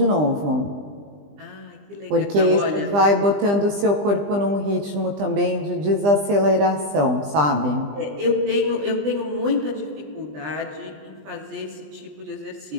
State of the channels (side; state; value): left; late; 20 ms